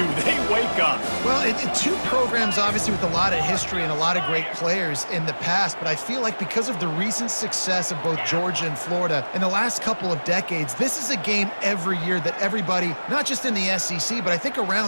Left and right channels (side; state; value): both; inverted; correlation -1.00